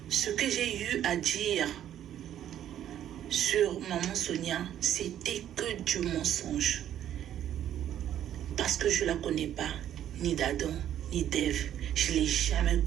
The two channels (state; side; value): quieter; left; 10.9 dB